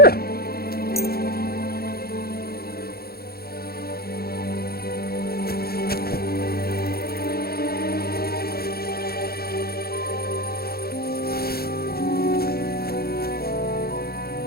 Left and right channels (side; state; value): right; late; 0.45 ms